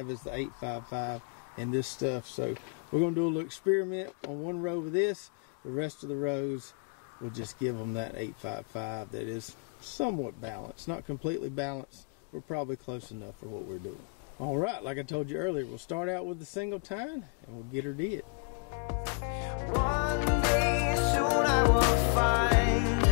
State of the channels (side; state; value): right; quieter; 36.9 dB